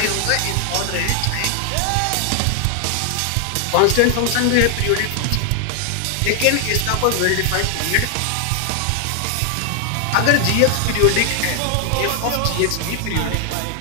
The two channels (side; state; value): both; different; correlation 0.00